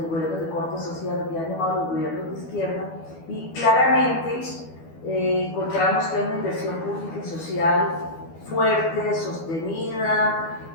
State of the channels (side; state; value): right; late; 12 ms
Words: gobiernos de corte social que han llamado los gobiernos de izquierda, y claramente encontramos que hay una inversión pública y social fuerte, sostenida.